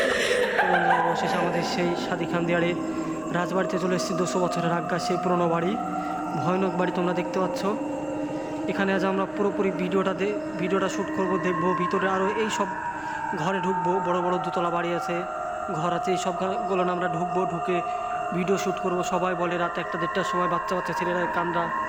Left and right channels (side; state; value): right; noise; rumble, 26 dB below the sound